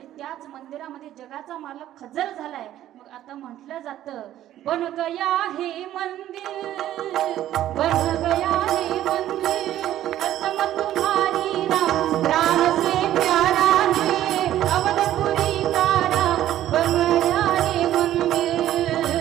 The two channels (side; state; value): left; quieter; 12.7 dB